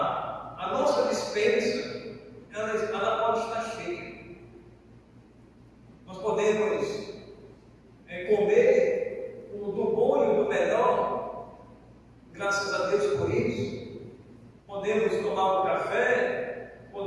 nossa despensa ela pode estar cheia. Nós podemos comer do bom e do melhor, graças a Deus por isso. Podemos tomar um café,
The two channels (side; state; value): both; identical; correlation 1.00